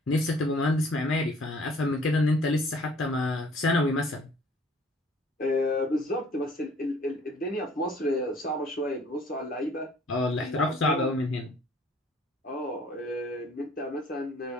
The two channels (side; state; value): both; normal; correlation 0.56